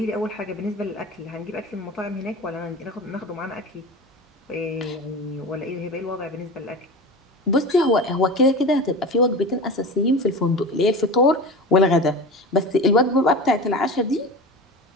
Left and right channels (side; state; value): both; normal; correlation 0.31